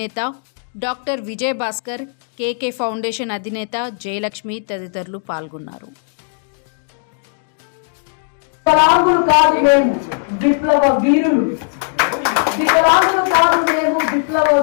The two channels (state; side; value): silent; right; digital silence